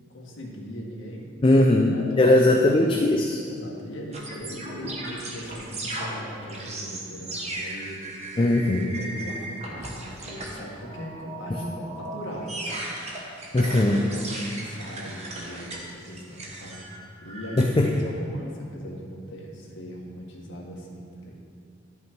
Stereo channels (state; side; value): normal; both; correlation 0.67